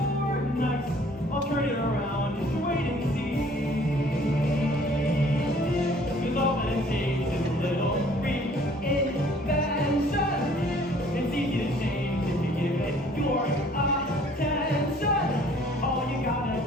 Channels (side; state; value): both; normal; correlation 0.56